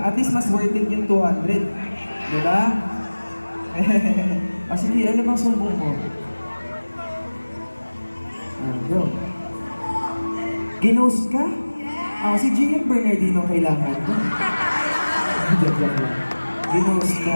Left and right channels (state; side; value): inverted; both; correlation -1.00